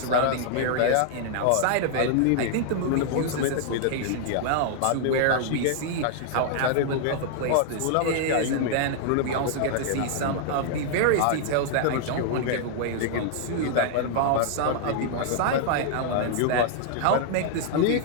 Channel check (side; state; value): both; different; correlation -0.01